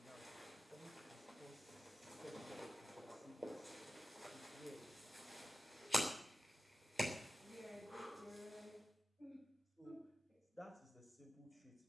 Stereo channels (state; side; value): normal; both; correlation 0.93